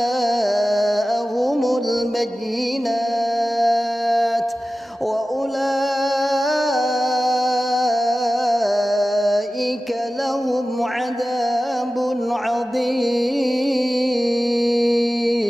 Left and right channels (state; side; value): normal; both; correlation 0.95